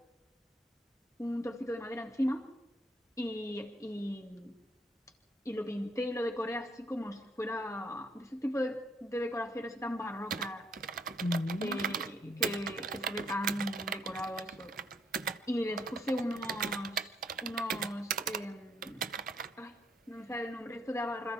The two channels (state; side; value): normal; both; correlation 0.72